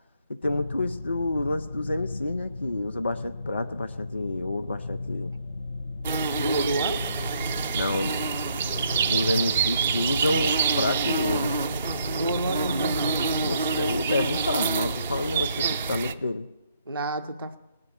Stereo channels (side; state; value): both; inverted; correlation -0.70